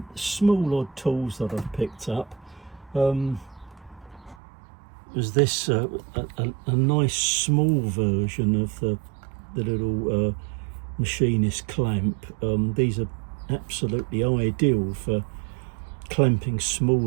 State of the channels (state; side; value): drops out; left; at 4.4 s